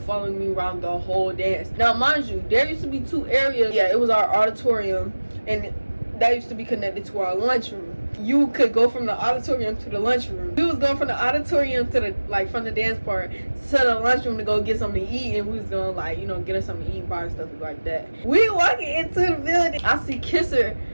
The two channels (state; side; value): inverted; both; correlation -1.00